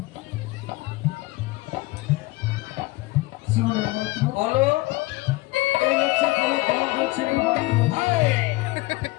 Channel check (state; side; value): quieter; right; 21.1 dB